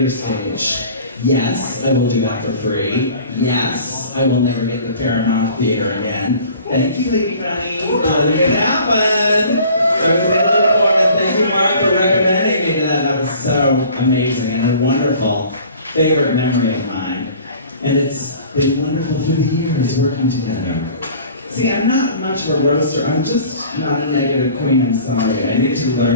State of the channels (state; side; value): inverted; both; correlation -0.47